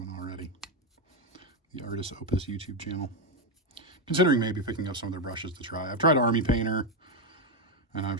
already. The Artis Opus YouTube channel. Considering maybe picking up some of their brushes to try. I've tried Army Painter, and I've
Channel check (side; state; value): both; normal; correlation 0.06